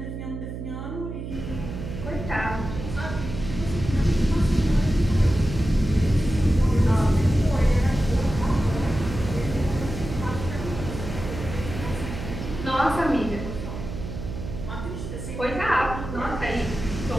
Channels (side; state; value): right; noise; hum, 7 dB below the sound